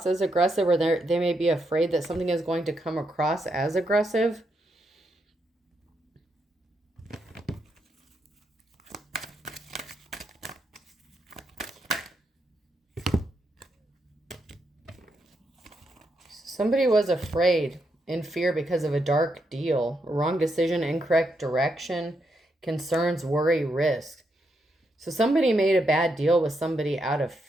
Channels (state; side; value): normal; both; correlation 0.80